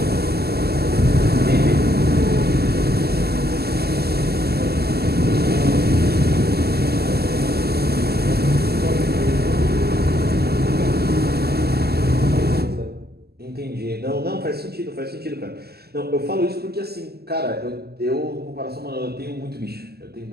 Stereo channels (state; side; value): late; left; 0.46 ms